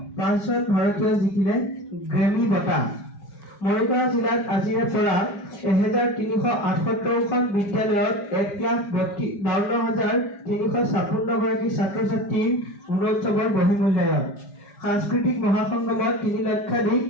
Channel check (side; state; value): right; late; 4.9 ms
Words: 5জন ভাৰতীয় জিকিলে গ্ৰেমী বঁটা মৰিগাঁও জিলাত আজিৰে পৰা 1378খন বিদ্যালয়ত 1,52,356 গৰাকী ছাত্ৰ ছাত্ৰীৰ গুণোৎসৱৰ বহিমূল্যায়ন সাংস্কৃতিক মহাসংগমত 3 লক্ষাধিক